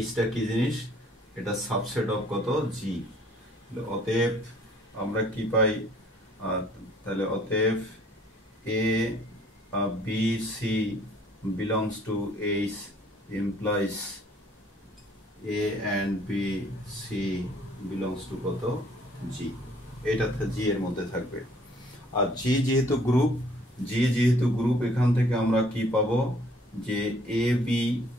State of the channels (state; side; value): normal; both; correlation 0.59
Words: Hটা কি জিনিস? এটা সাবসেট অফ কত? G। অতএব আমরা কি পাই? তাহলে অতএব A B C belongs to H implies A and B C belongs to কত? G। এটা G এর মধ্যে থাকবে। আর G যেহেতু গ্রুপ, এখান থেকে আমরা কি পাবো? যে A B